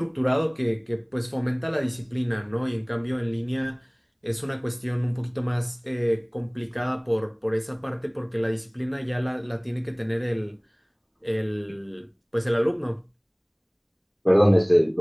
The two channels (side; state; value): both; identical; correlation 1.00